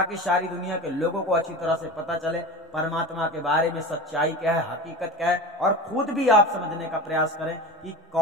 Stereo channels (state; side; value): normal; both; correlation 0.30